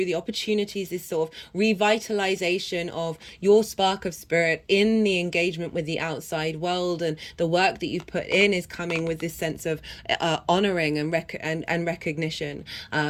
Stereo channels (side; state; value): both; identical; correlation 1.00